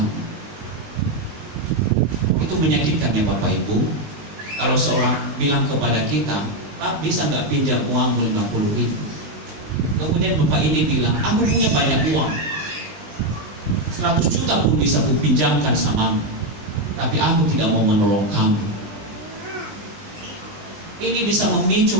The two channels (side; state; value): left; late; 19 ms